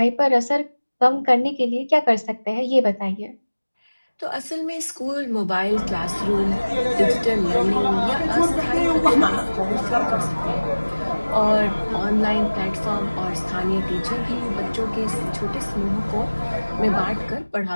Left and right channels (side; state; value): both; inverted; correlation -1.00